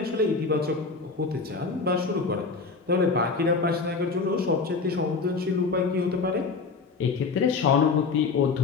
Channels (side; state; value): right; quieter; 4.5 dB